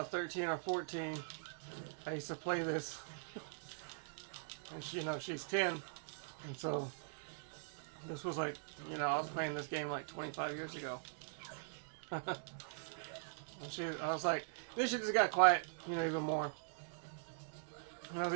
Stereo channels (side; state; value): left; silent; digital silence